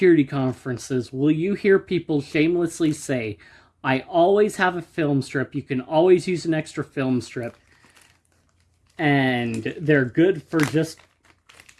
conferences will you hear people shamelessly say, I always have a film strip. You can always use an extra film strip. And they're good for just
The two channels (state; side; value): identical; both; correlation 1.00